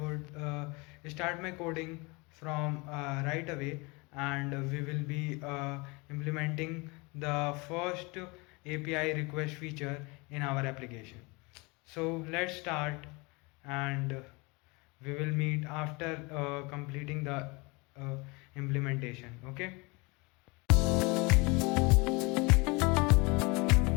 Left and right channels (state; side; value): quieter; right; 27.1 dB